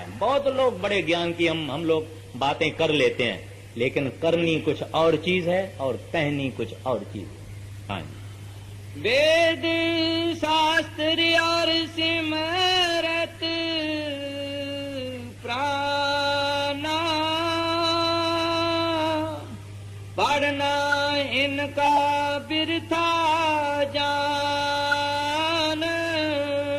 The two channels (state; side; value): identical; both; correlation 1.00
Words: बहुत लोग बड़े ज्ञान की हम लोग बातें कर लेते हैं, लेकिन करनी कुछ और चीज है और कहनी कुछ और चीज है। हाँ जी। वेद शास्त्र और सिमरत प्राणा, पढ़ना इनका बिरथा जान।